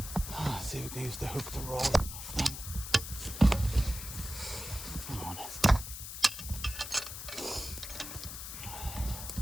Let's see if we can use the hook to roll it off then. Come on.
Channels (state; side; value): noise; left; hiss, 8 dB below the sound